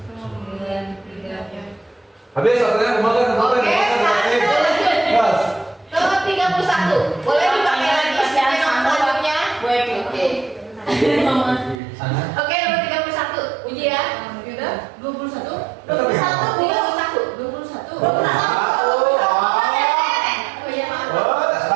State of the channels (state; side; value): drops out; left; at 11.8 s